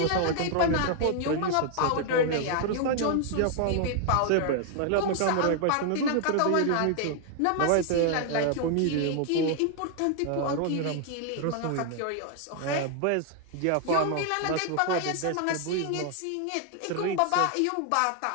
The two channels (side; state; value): both; different; correlation 0.00